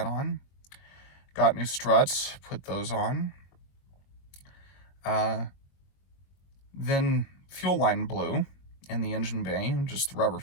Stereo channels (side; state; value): right; late; 22 ms